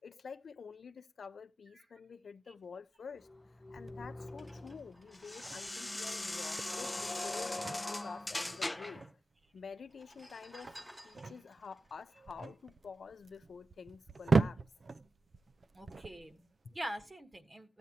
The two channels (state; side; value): normal; both; correlation 0.93